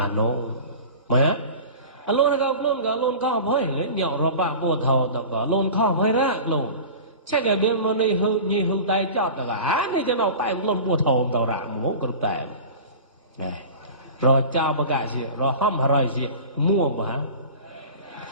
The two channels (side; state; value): both; inverted; correlation -0.35